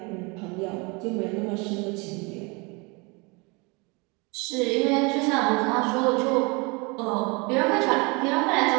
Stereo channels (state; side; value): quieter; left; 28.7 dB